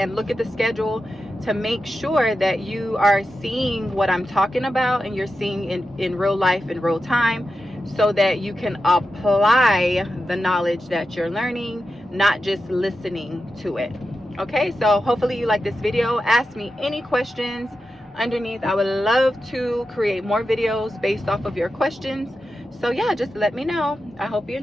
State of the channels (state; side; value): normal; both; correlation 0.90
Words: look at the schedule to make sure that you are seeing what I'm talking about, and you're seeing in real life, in real time, so that you can apply the knowledge that you're learning, not just listening to it. Okay, so hopefully you like this video. Ask me any questions underneath. I would love to create more videos based off of your questions. So yeah, just let me know. I hope you